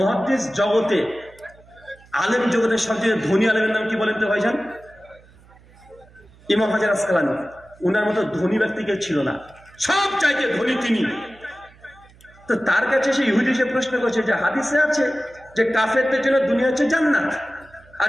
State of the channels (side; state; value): right; noise; hum, 26 dB below the sound